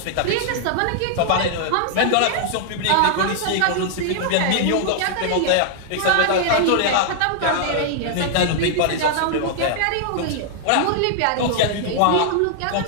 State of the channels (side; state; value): both; different; correlation 0.00